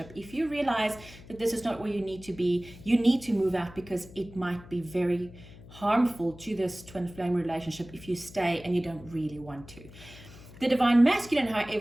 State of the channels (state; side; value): noise; left; hum, 19 dB below the sound